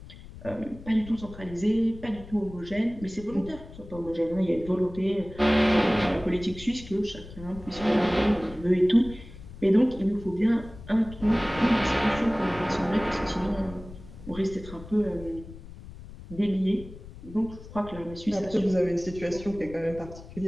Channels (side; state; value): left; noise; rumble, 16 dB below the sound